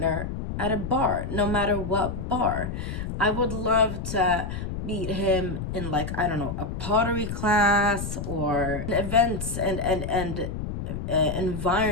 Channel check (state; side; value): noise; left; rumble, 5 dB below the sound